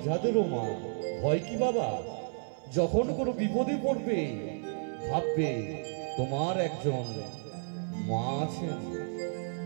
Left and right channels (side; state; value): left; silent; 55 dB below the other